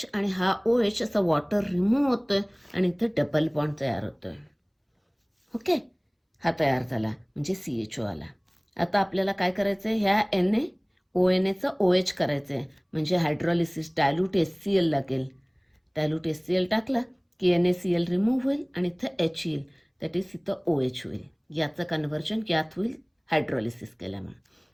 आणि हा OH असा वॉटर रिमूव्ह होतोय आणि इथे डबल बॉन्ड तयार होतोय. ओके, हा तयार झाला म्हणजे CHO आला. आता आपल्याला काय करायचं आहे, ह्या NaONaचं OH करायचं आहे, म्हणजे हायड्रोलिसिस डायल्यूट HCl लागेल. डायल्यूट HCl टाकला की NaCl रिमूव्ह होईल आणि इथं H येईल, दॅट इज इथं OH होईल. याचं कन्व्हर्जन यात होईल हायड्रोलिसिस केल्यामुळे.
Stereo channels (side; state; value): both; identical; correlation 1.00